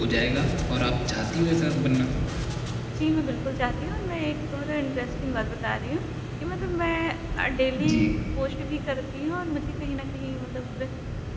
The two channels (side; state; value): both; identical; correlation 1.00